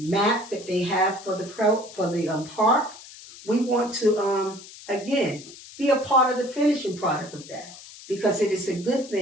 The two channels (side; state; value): left; noise; hiss, 17 dB below the sound